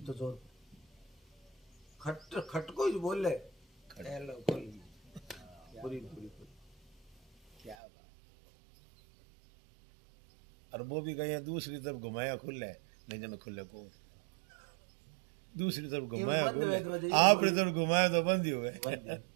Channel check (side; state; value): left; drops out; at 7.8 s